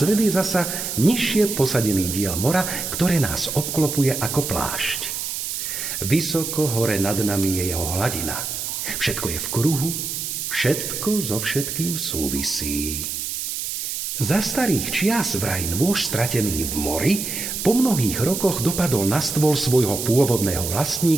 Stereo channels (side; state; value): right; noise; hiss, 4 dB below the sound